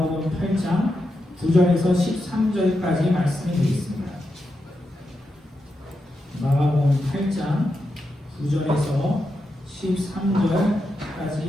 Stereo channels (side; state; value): both; normal; correlation 0.87